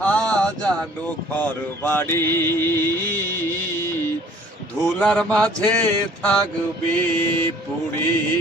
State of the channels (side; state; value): both; normal; correlation 0.54